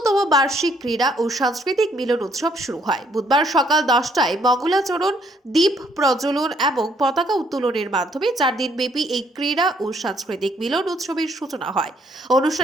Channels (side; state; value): both; normal; correlation 0.67